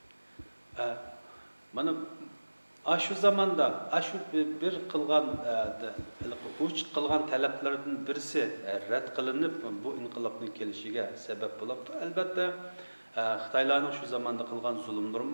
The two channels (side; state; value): both; inverted; correlation -1.00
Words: Mana shu zamonda shu bir qilgan uch qilgan talablardan birisi rad qilinib bu inqilobning kelishiga sabab bo'libdi. Albatta Xitoylarning shu zamonda qilgan zulmlari